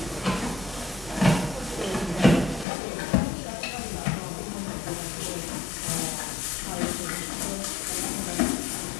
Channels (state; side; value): drops out; right; at 2.7 s